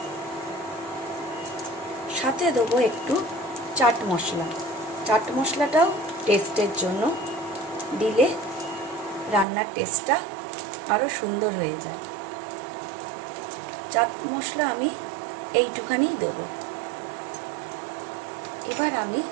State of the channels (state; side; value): drops out; left; at 9.5 s